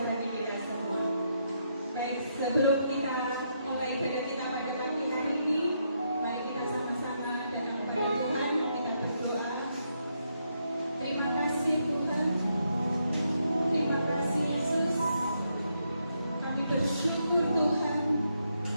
bagi kita semua. Baik, sebelum kita mulai ibadah kita pada pagi hari ini, mari kita sama-sama datang kepada Tuhan, kita berdoa. Terima kasih Tuhan, terima kasih Yesus.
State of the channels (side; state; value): both; inverted; correlation -0.78